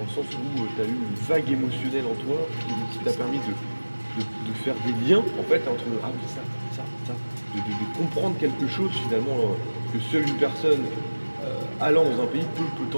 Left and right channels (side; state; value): both; inverted; correlation -1.00